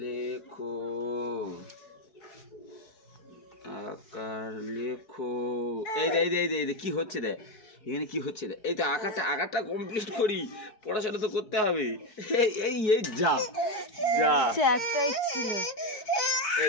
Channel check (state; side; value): late; right; 4.8 ms